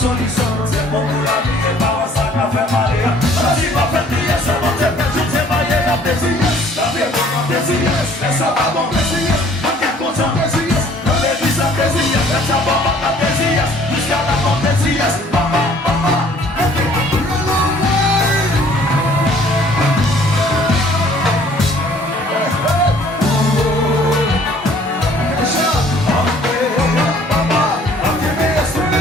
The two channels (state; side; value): normal; both; correlation 0.57